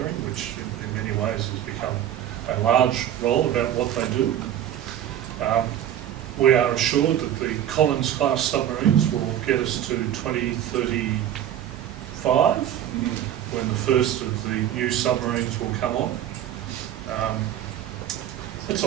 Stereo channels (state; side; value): quieter; left; 11.0 dB